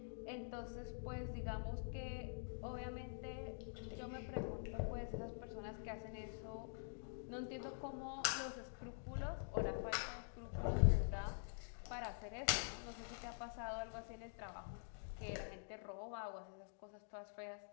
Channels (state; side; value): silent; right; digital silence